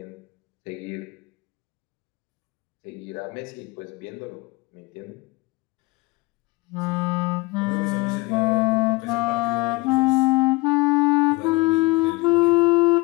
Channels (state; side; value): quieter; right; 24.2 dB